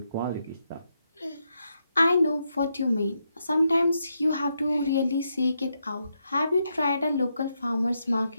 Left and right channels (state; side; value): inverted; both; correlation -0.82